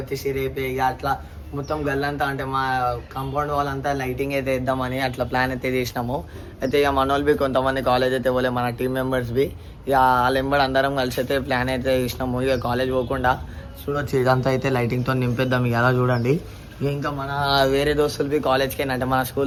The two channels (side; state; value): both; identical; correlation 1.00